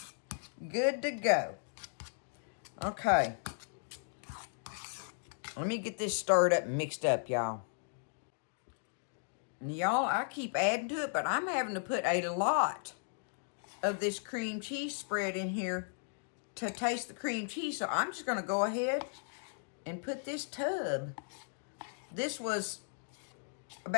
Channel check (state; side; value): silent; right; digital silence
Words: Good to go. Okay. Let me get this stirred up and mixed up, y'all. Y'all, I keep adding to it, but I'm having to put a lot of this cream cheese spread in here to taste the cream cheese. So I'm just going to go ahead and put this tub. This was